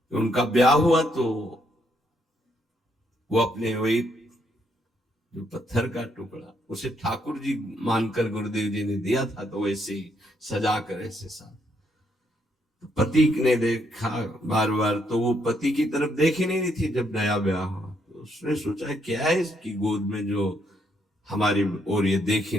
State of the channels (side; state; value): both; normal; correlation 0.74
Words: उनका ब्याह हुआ तो वो अपने वही जो पत्थर का टुकड़ा उसे ठाकुर जी मानकर गुरुदेव जी ने दिया था, तो वैसे ही सजा कर ऐसे साथ पति ने देखा बार बार, तो वो पति की तरफ देख ही नहीं रही थी। जब नया ब्याह हुआ तो उसने सोचा क्या है इसकी गोद में जो हमारी ओर ये देख